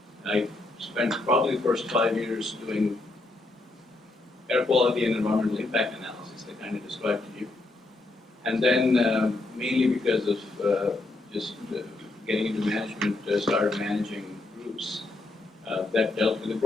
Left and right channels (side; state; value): right; quieter; 3.0 dB